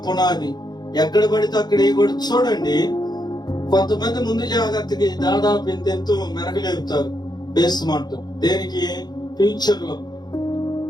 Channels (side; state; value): right; late; 0.20 ms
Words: పునాది, ఎక్కడ పడితే అక్కడ కూడా చూడండి. కొంతమంది ముందు జాగ్రత్తకి దాదాపు ఎంతెంతో మెరగలేపుతారు బేస్మెంట్. దేనికి? ఫ్యూచర్ లో